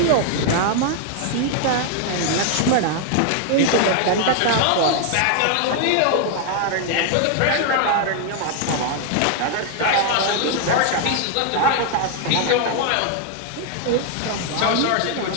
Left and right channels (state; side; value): different; both; correlation 0.00